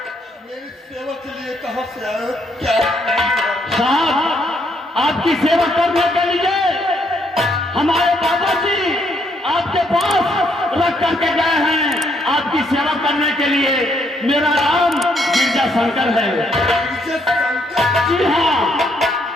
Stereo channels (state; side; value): normal; both; correlation 0.71